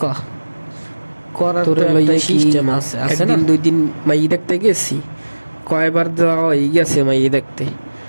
ক? করার তো একটা সিস্টেম আছে, আছে না? 1 2 দিন মাই দেখতে গেছি, কয়বার যাওয়া হয়ে গেছে মাই দেখতে।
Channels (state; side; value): inverted; both; correlation -1.00